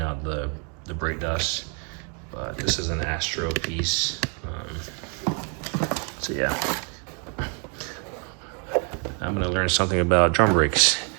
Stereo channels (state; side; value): quieter; left; 37.9 dB